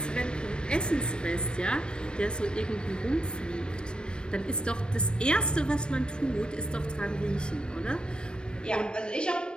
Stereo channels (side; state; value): right; late; 0.049 ms